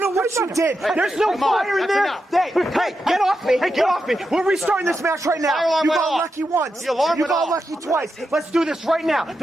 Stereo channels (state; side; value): normal; both; correlation 0.87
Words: know what you did. There's no fire in there. Hey, get off me. Hey, get off me. We're restarting this match right now. You got lucky once. You got lucky twice. Let's do this right now.